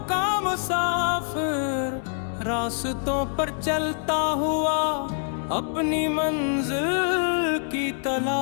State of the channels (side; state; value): right; silent; 62 dB below the other